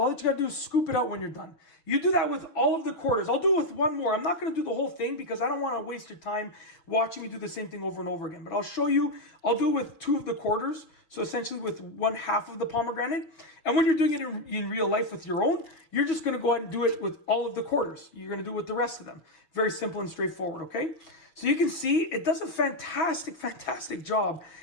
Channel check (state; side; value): late; right; 6.2 ms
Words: all that you got to do is scoop it out when you're done. You do that with all of the quarters. I'll do it with one more. I'm not going to do the whole thing because I don't want to waste your time watching me do the same thing over and over again. But I'll show you. I'll do it with 2 of the quarters. So essentially with 1/2 of the pomegranate. And when you're doing it in real life with your own, you're just going to go ahead and do it with all of the quarters. You're going to do it with the rest of them. Very simple and straightforward, okay? So you can see it does a fantastic, fantastic job